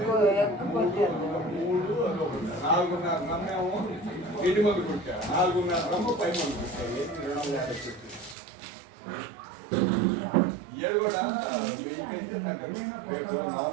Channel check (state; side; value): drops out; left; at 8.3 s